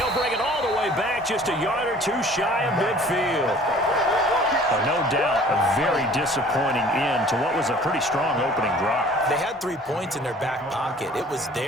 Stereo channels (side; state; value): both; normal; correlation 0.50